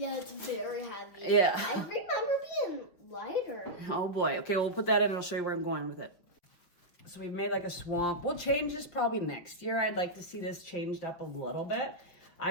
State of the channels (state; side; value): late; right; 5.6 ms